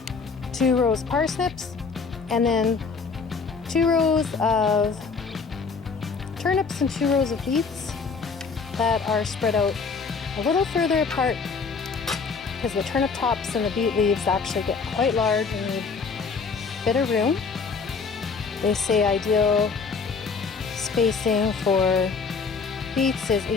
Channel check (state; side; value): quieter; right; 5.1 dB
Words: 2 rows of parsnips, and then 2 rows of turnips and 2 rows of beets that are spread out a little further apart because the turnip tops and the beet leaves actually get quite large and need a bit of room. They say ideal spacing for beets is